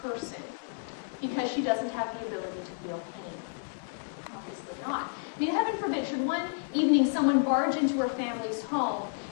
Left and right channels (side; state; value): right; silent; 57 dB below the other